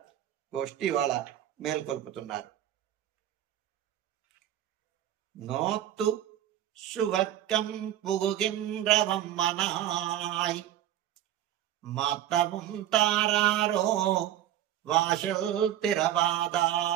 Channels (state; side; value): quieter; left; 12.0 dB